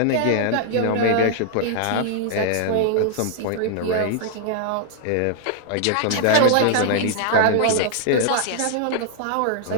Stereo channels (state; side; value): different; both; correlation -0.01